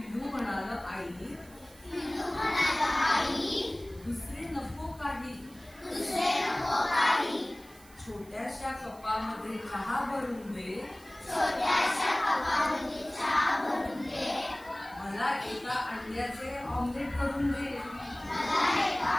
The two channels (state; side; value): noise; right; hiss, 24 dB below the sound